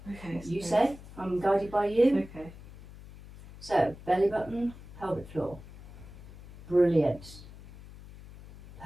Okay. You say. I'm guided by you. Okay. So, belly button, pelvic floor. Brilliant.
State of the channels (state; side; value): noise; left; hum, 17 dB below the sound